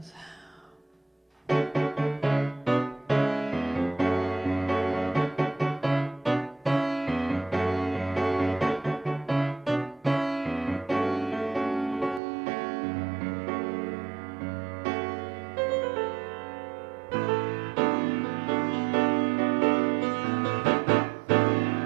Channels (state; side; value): drops out; left; at 12.2 s